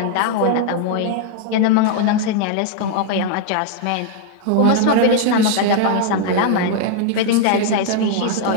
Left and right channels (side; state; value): both; different; correlation 0.00